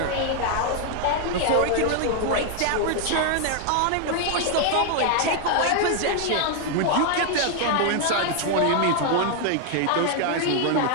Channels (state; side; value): different; both; correlation 0.00